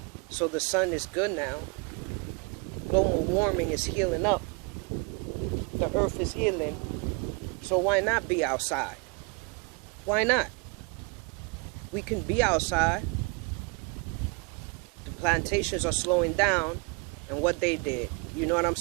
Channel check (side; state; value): left; quieter; 31.1 dB